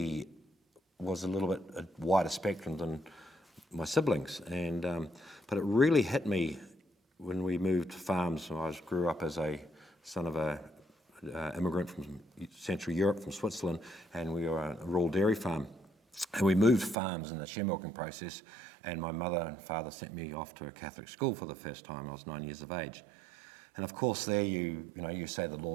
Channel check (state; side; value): drops out; left; at 16.9 s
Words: was a little bit a wider spectrum than my siblings. But it really hit me when we moved farms. I grew up as a son of a immigrant from Central Europe, from Switzerland, and we were a rural dairy farm. And we moved farms in the share milking process, and my mother and father sent me off to a Catholic school for the first time. I was 9 years of age. And of course there you say the